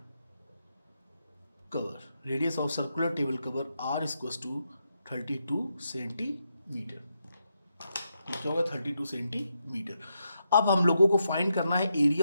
cover, radius of circular table cover R equals to 32 centimetre. ये क्या होगा 32 सेंटीमीटर। अब हम लोगों को फाइंड करना है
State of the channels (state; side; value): inverted; both; correlation -0.83